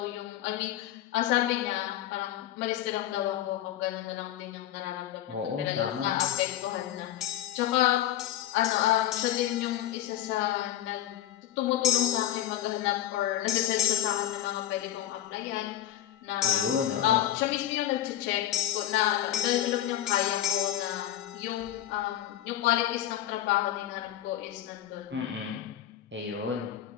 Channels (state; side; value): quieter; right; 12.5 dB